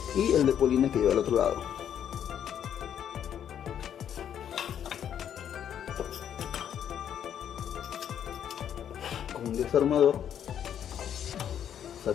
y el de polines que lleva al otro lado. Con un desarmador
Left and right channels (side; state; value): right; quieter; 9.4 dB